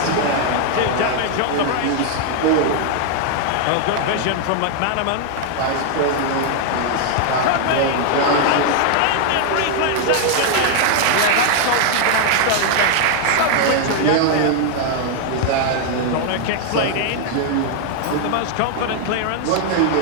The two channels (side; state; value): both; different; correlation 0.00